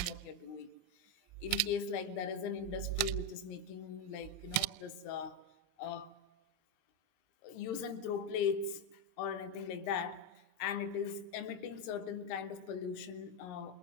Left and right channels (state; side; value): late; right; 20 ms